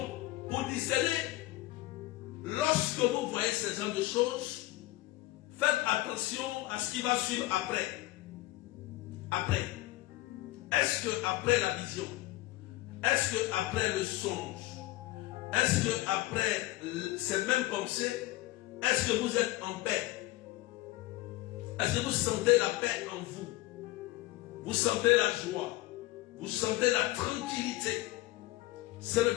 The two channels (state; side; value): quieter; right; 18.0 dB